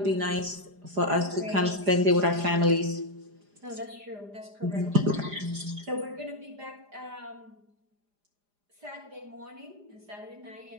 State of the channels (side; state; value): left; late; 4.9 ms